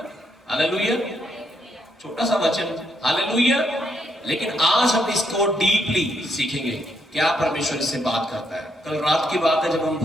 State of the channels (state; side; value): normal; both; correlation 0.76